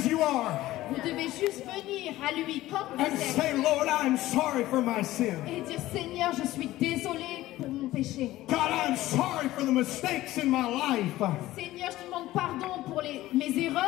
you are Vous devez juste venir à lui comme vous and êtes say, Lord, I'm sorry for my sin. et dire Seigneur, je suis désolé pour mon péché. God, I'm sorry for the mistakes in my life. Seigneur, je te demande pardon pour mes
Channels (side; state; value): right; quieter; 16.2 dB